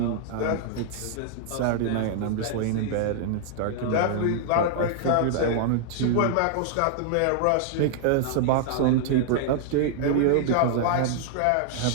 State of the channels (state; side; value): different; both; correlation -0.01